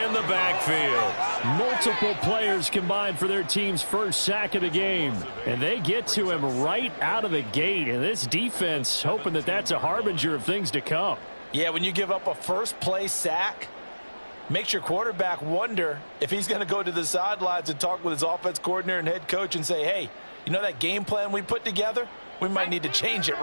the backfield. Multiple players combined for their team's first sack of the game. And they get to him right out of the gate. And this defense hoping that that's a harbinger of things to come. Yeah, when you give up a first play sack, makes your quarterback wonder if he's going to go to the sidelines and talk with his offense coordinator and head coach and say, hey, you know that game plan we put together? We might need to change it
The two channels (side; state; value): both; inverted; correlation -1.00